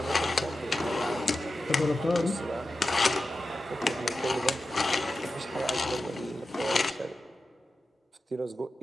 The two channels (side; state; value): both; normal; correlation 0.92